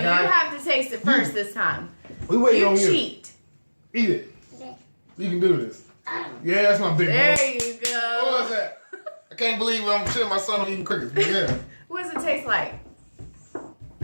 guy. have to taste it first this time. We waiting You on you. cheat. Eat it. Okay. You can do this. Yeah, that's my big There boy. you What was go. that? I can't believe I'm shitting my son on eating crickets. But yeah. What does it taste like?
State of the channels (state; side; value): inverted; both; correlation -1.00